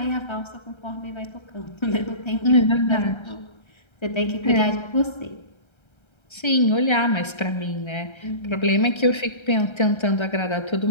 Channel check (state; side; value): late; right; 1.3 ms